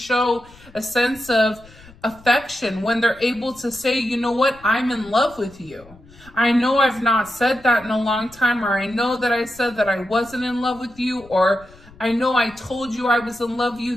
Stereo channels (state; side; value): noise; left; rumble, 24 dB below the sound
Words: a sense of affection, when they're able to say, you know what, I'm in love with you. I know I've not said that in a long time, or I know that I said that I wasn't in love with you, or I know I told you I was in love